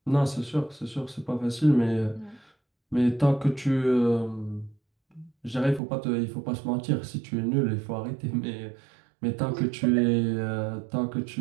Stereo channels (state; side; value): drops out; left; at 5.8 s